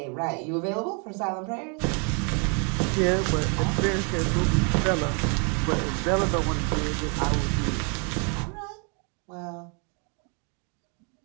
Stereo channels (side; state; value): left; quieter; 36.4 dB